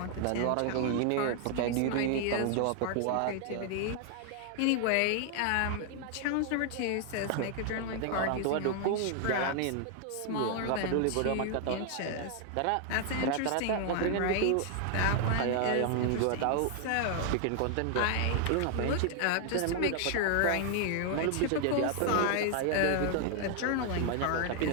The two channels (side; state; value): both; different; correlation 0.00